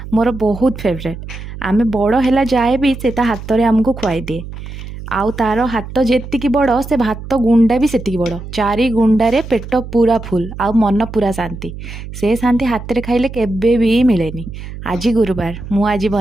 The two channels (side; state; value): right; noise; hum, 11 dB below the sound